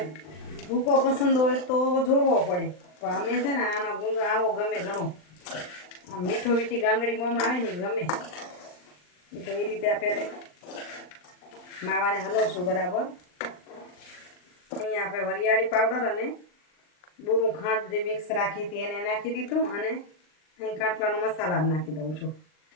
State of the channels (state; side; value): late; right; 39 ms